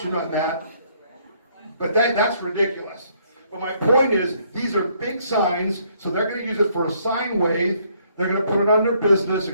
on that, but that's ridiculous. But my point is, these are big signs, so they're going to use it for a sign wave. They're going to put it on their business.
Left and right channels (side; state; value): both; inverted; correlation -0.67